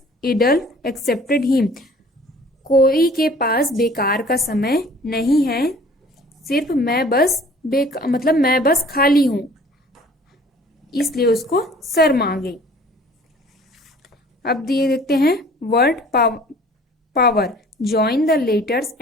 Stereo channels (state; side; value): normal; both; correlation 0.51